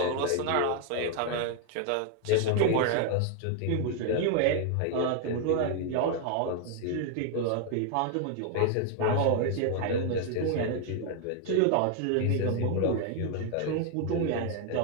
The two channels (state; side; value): different; both; correlation 0.00